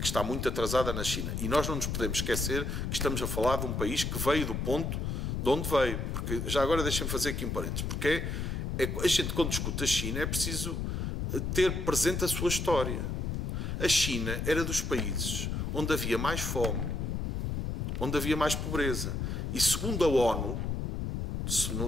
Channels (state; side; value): noise; left; rumble, 2 dB below the sound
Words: está muito atrasada na China. E nós não nos podemos esquecer que estamos a falar de um país que veio do ponto de onde veio. Porque, já agora deixem-me fazer aqui um parênteses, porque a gente, quando discute a China, é preciso ter presente a sua história. A China era dos países onde havia mais fome, onde havia mais pobreza. E segundo a ONU,